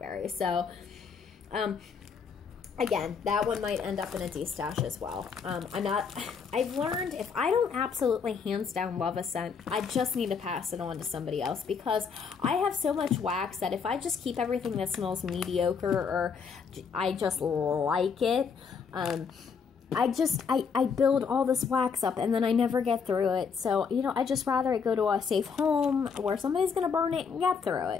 So, again, that one might end up in a de-stash as well. I've learned if I don't absolutely hands down love a scent, I just need to pass it on to somebody else, because I have so much wax that if I just keep everything that smells mediocre or I just like it, I build all this wax up and then I never get through it. So, you know, I just rather it go to a safe home where somebody's going to burn it and get through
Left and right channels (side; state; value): right; quieter; 6.0 dB